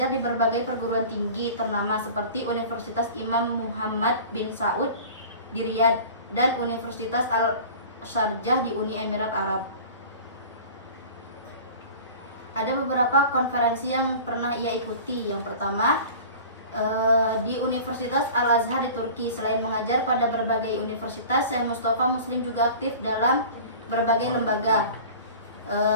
di berbagai perguruan tinggi ternama seperti Universitas Imam Muhammad bin Saud di Riyadh dan Universitas Al-Sharjah di Uni Emirat Arab. Ada beberapa konferensi yang pernah ia ikuti. Yang pertama, di Universitas Al-Azhar di Turki. Selain mengajar pada berbagai universitas, Syekh Mustafa Muslim juga aktif dalam berbagai lembaga.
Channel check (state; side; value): inverted; both; correlation -0.41